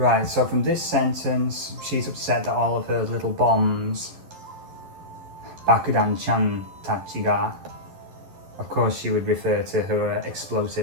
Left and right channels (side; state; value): left; late; 11 ms